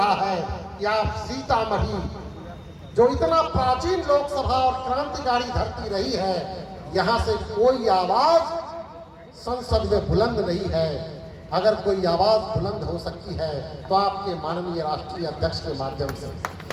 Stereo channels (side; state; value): both; identical; correlation 1.00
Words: है कि आप सीतामढ़ी, जो इतना प्राचीन लोकसभा और क्रांतिकारी धरती रही है, यहां से कोई आवाज संसद में बुलंद नहीं है। अगर कोई आवाज बुलंद हो सकती है तो आपके माननीय राष्ट्रीय अध्यक्ष के माध्यम से,